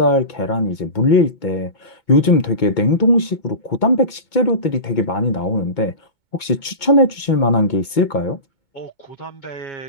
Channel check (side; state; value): right; late; 2.2 ms